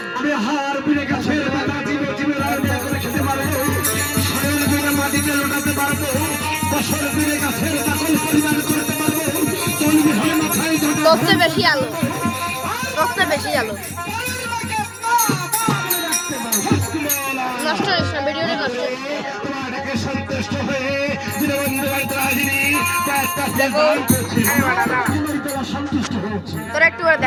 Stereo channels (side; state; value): both; identical; correlation 1.00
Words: আমি হার বিড়ে গাছের পাতা চিপে চিপে রান্না করে খেতে পারবো, শরীর বিড়ে মাটিতে লোটাতে পারবো, বছর বিড়ে গাছের পাগল পরিবার করতে পারবো। রক্তে বেশি আলো, রক্তে বেশি আলো নষ্ট হয়েছে না, ভিডিওটা নষ্ট সন্তুষ্ট হয়ে তোরা একটু করে